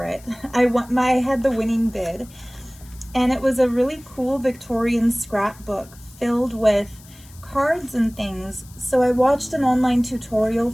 it. I had the winning bid, and it was a really cool Victorian scrapbook filled with cards and things. So I watched an online tutorial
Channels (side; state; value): left; noise; hiss, 23 dB below the sound